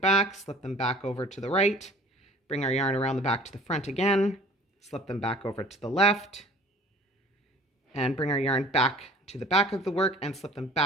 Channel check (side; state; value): both; normal; correlation 0.48